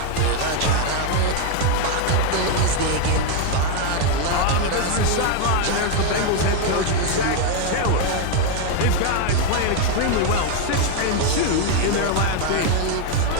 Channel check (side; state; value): both; different; correlation 0.01